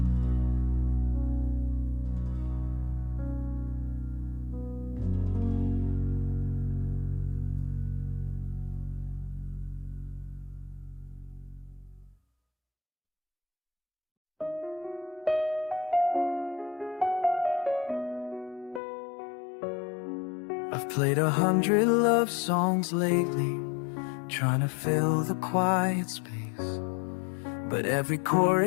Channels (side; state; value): right; drops out; at 18.8 s